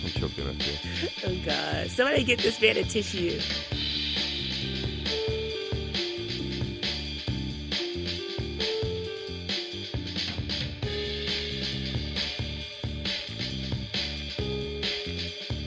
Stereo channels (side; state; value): both; identical; correlation 1.00